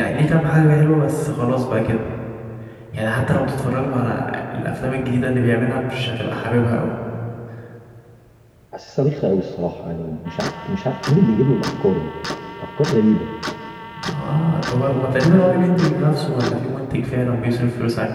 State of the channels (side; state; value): both; identical; correlation 1.00